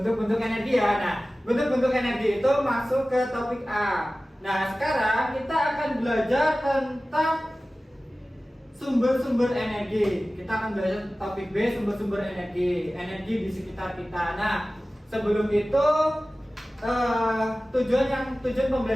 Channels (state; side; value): normal; both; correlation 0.96